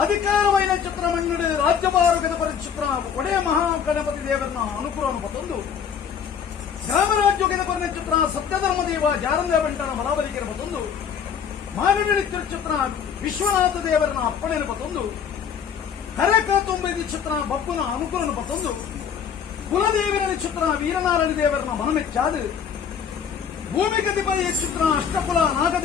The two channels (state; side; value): quieter; right; 7.6 dB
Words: ಅಧಿಕಾರವೈನ ಚಿತ್ರ ಮಣ್ಣು ರಾಜ್ಯಭಾರಗದ ಪರಿಚಿತ್ರ ಒಡೆಯ ಮಹಾಗಣಪತಿ ದೇವರನ್ನ ಅನುಕೂಲವನ್ನು ಪತ್ತೊಂದು ಗ್ರಾಮರಾಜ್ಯೋಗದ ಕೊನೆ ಚಿತ್ರ ಸತ್ಯಧರ್ಮ ದೇವ ಜಾರಂದ ಬಂಟನ ಬಲಾಬಲಿಕೆಯ ಪತ್ತೊಂದು ಮಾನವೀಯ ಚಿತ್ರ ವಿಶ್ವನಾಥ ದೇವರನ್ನ ಅಪ್ಪಣೆಯನ್ನು ಪತ್ತೊಂದು ಕರೆಕಾತೊಂಬೈದು ಚಿತ್ರ ಬಪ್ಪನ ಅನುಕೂಲವನ್ನು ಪತ್ತೊಂದು ಕುಲದೇವರ ಚಿತ್ರ ವೀರನಾರಾಯಣ ದೇವರನ್ನ ಮನಮೆಚ್ಚಾದು ಭೂಮಿ ಕತಿಪದ ಚಿತ್ರ ಅಷ್ಟಕುಲ